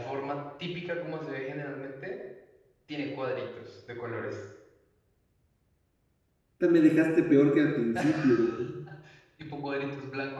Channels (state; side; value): identical; both; correlation 1.00